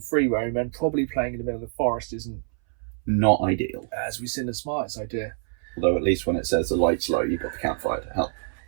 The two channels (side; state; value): left; silent; 61 dB below the other